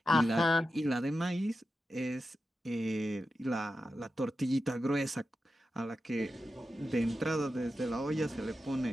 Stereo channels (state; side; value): normal; both; correlation 0.90